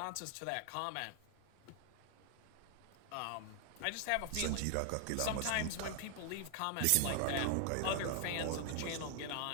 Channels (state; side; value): different; both; correlation 0.00